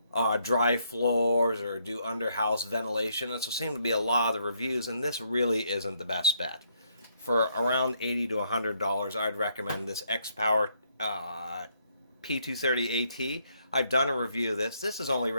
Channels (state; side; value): inverted; both; correlation -0.72